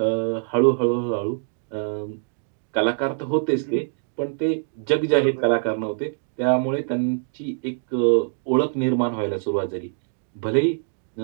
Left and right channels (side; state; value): left; silent; digital silence